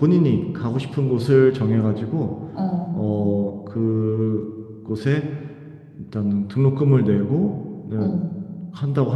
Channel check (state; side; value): identical; both; correlation 1.00